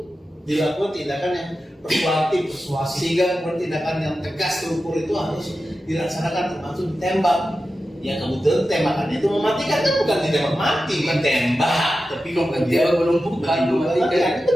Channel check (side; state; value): both; normal; correlation 0.92